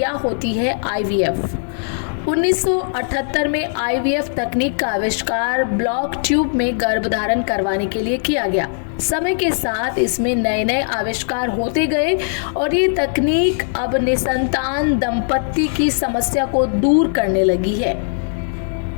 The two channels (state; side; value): silent; right; 59 dB below the other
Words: होती है आईवीएफ? 1978 में आईवीएफ तकनीक का आविष्कार ब्लॉक ट्यूब में गर्भधारण करवाने के लिए किया गया। समय के साथ इसमें नए नए आविष्कार होते गए और ये तकनीक अब निसंतान दंपत्ति की समस्या को दूर करने लगी है।